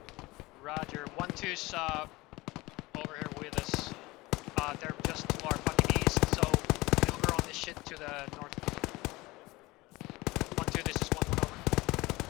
Roger. 1-2's over here with us. They're just to our fucking east, so maneuver on this shit to the north. 1-2, this is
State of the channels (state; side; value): quieter; right; 21.1 dB